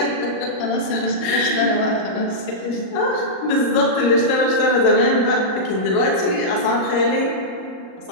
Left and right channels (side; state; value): right; late; 38 ms